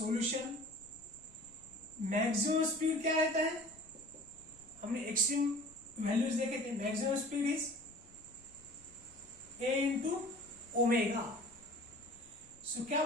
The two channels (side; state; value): left; noise; rumble, 27 dB below the sound